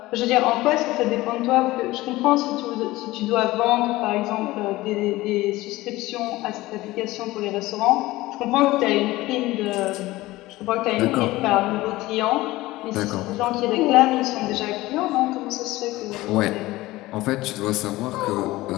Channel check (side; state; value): right; quieter; 18.5 dB